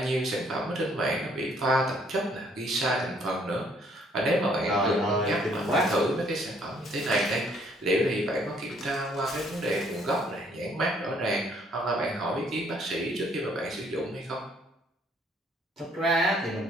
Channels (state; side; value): normal; both; correlation 0.64